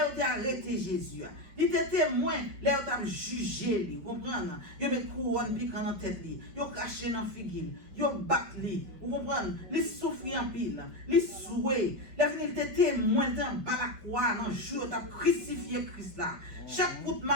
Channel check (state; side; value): late; left; 5.2 ms